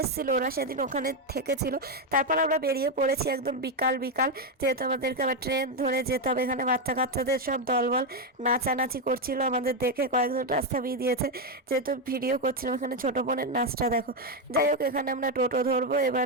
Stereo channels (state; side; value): normal; both; correlation 0.05